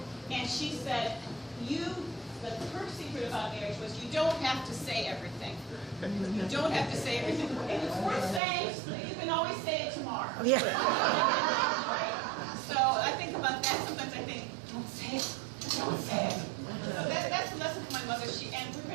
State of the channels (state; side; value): drops out; left; at 8.4 s